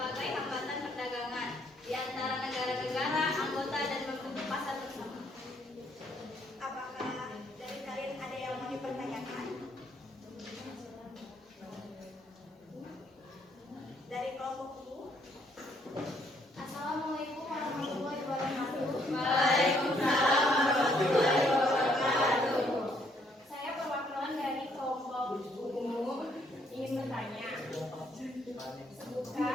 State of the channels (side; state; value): both; normal; correlation 0.69